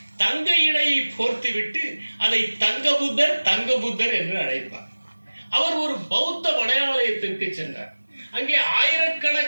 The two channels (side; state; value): both; inverted; correlation -1.00